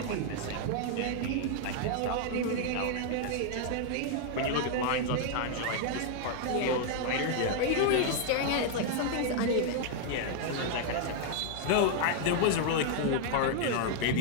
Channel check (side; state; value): both; different; correlation 0.00